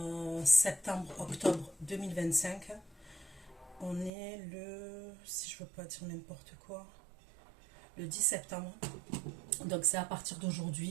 septembre-octobre 2025. On est le, si je ne veux pas dire n'importe quoi, le 10 septembre. Donc c'est à partir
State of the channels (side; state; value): left; drops out; at 4.1 s